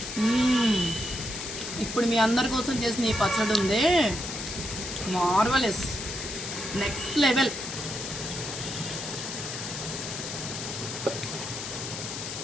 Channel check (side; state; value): left; noise; hiss, 6 dB below the sound